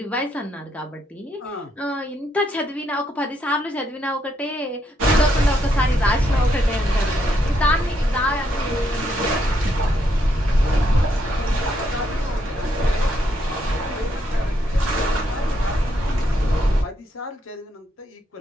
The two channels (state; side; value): normal; both; correlation 0.76